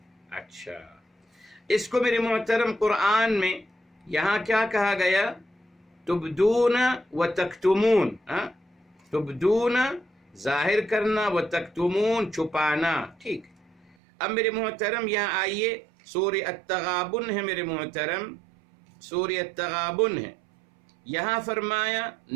اچھا اس کو میرے محترم قرآن میں یہاں کیا کہا گیا؟ تبدون و تکتمون، تبدون ظاہر کرنا، و تکتمون چھپانا، ٹھیک۔ اب میرے محترم یہاں آئیے، سورہ التغابن ہے میرے محترم، سورہ التغابن ہے، یہاں فرمایا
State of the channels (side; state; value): left; drops out; at 14.0 s